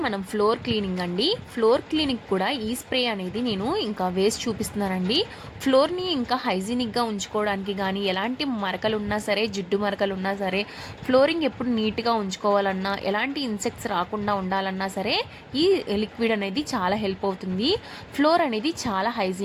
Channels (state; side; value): identical; both; correlation 1.00